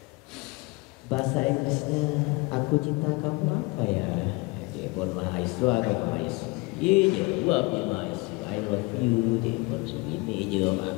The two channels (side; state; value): right; quieter; 25.6 dB